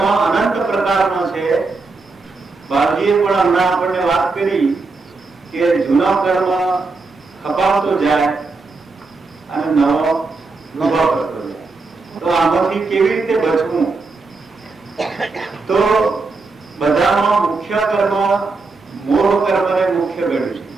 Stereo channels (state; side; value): quieter; left; 3.9 dB